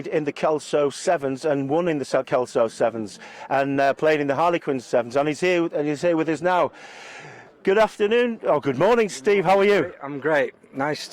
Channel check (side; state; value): both; identical; correlation 1.00